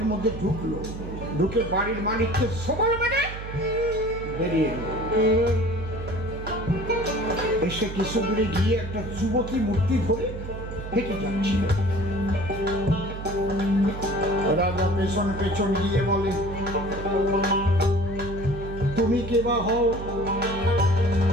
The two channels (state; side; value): noise; right; hum, 9 dB below the sound